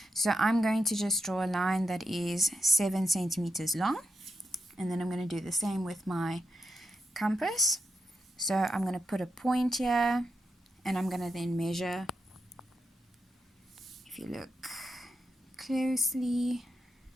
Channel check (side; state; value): both; normal; correlation 0.85